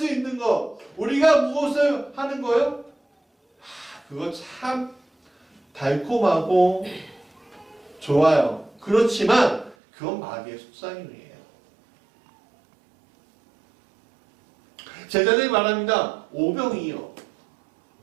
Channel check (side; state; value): left; drops out; at 9.8 s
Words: 있는 것, 우리가 무엇을 하는 거요? 그거 참 달콤하고 좋아요. 그렇지만 그건 마귀의 속삭임이에요. 제자들이 말합니다. 오병이요.